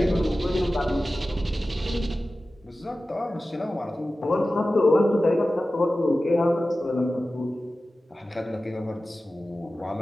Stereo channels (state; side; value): normal; both; correlation 0.95